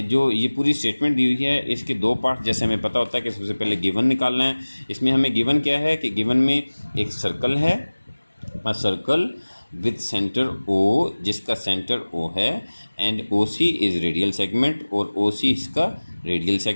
जो ये पूरी स्टेटमेंट दी हुई है इसके दो पार्ट जैसे हमें पता होता है कि सबसे पहले गिवन निकालना है। इसमें हमें गिवन क्या है कि गिवन में एक सर्कल है, a circle with centre O, जिसका सेंटर ओ है, and O C is radial segment, और ओ सी इसका रेडियल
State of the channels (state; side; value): inverted; both; correlation -1.00